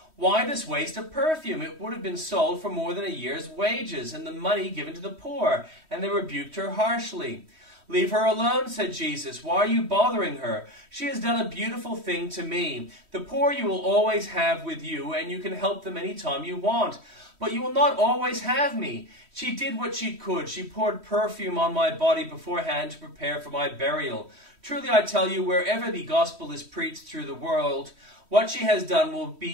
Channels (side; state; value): left; late; 3.1 ms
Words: "Why this waste of perfume? It would have been sold for more than a year's wages, and the money given to the poor." And they rebuked her harshly. "Leave her alone," said Jesus. "Why are you bothering her? She has done a beautiful thing to me. The poor you will always have with you, and you can help them any time you want. But you will not always have me. She did what she could. She poured perfume on my body beforehand to prepare for my burial. Truly I tell you, wherever the gospel is preached through the world, what she has done will